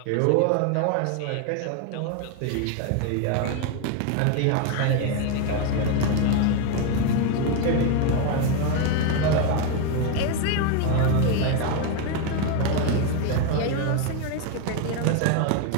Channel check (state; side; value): different; both; correlation 0.01